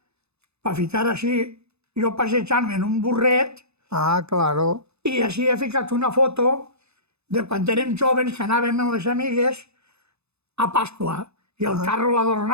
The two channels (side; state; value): left; late; 0.80 ms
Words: per ficar així, jo passejant-me en un burret, Claro. i així he ficat una foto de quan érem joves que anàvem amb les amigues a Pasqua, i el carro